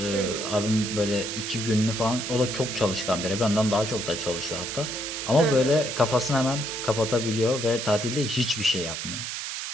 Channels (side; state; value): right; noise; hiss, 5 dB below the sound